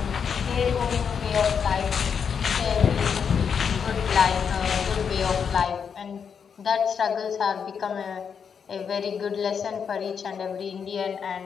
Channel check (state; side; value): quieter; right; 6.8 dB